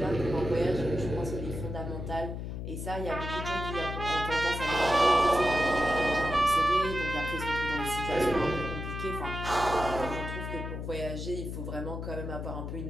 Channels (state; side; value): noise; left; hum, 6 dB below the sound